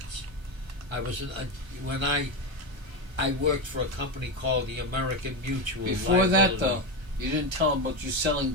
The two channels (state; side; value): late; left; 1.3 ms